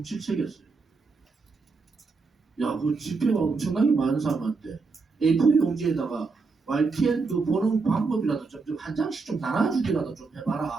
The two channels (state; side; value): quieter; left; 4.3 dB